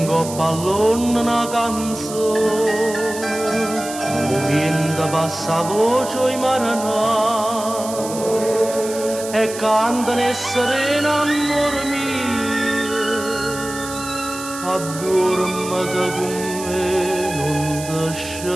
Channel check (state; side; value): noise; right; hiss, 11 dB below the sound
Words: coppa all'onna una canzone, o vento passa a voce i maranai e cantano e serena amore mio. Addormata con me, non